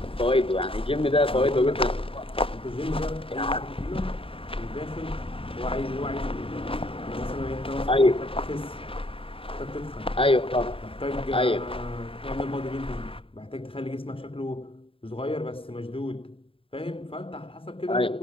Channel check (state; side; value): late; right; 0.27 ms